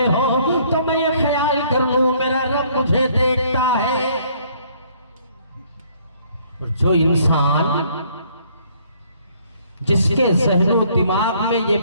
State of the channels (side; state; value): both; inverted; correlation -0.63